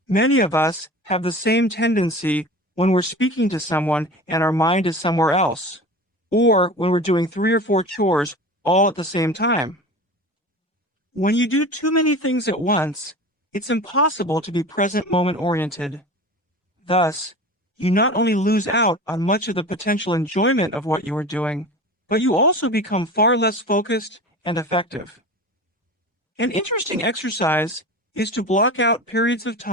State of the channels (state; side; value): late; right; 1.3 ms